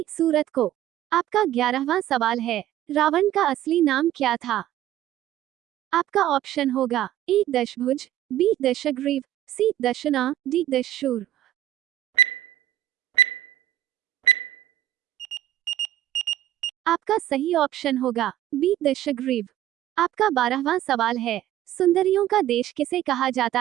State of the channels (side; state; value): left; quieter; 13.1 dB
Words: सूरत को। आपका 11वां सवाल है, रावण का असली नाम क्या था? आपका ऑप्शन होगा ए दशभुज, बी दशग्रीव, सी दशना, डी दशशूर। आपका सही ऑप्शन होगा बी दशग्रीव। आपका 12वां सवाल है, सुंदरियों का देश किसे कहा